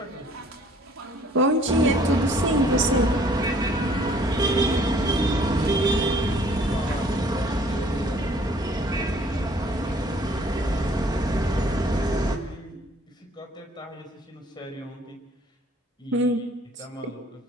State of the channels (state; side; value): normal; both; correlation 0.58